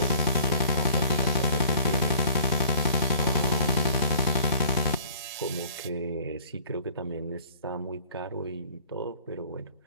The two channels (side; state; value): both; inverted; correlation -0.51